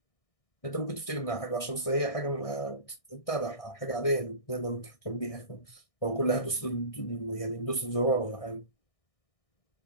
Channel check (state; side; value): late; right; 1.6 ms